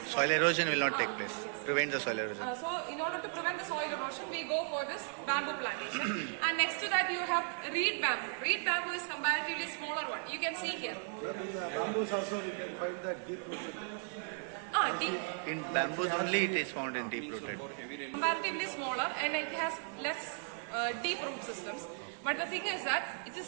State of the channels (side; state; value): left; silent; 54 dB below the other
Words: Soil erosion will not take place. Yes. Prevent the soil erosion. So in order to prevent the soil erosion, we go for this bamboo plantation. And next to that you have reed bamboo. Reed bamboo is comparatively smaller one. You can see here. In bamboos also we can find that deep rooted. Deep. In bamboos only it is found in deep rooted. Comparatively smaller, and it has less deep root systems. But the thing is that it is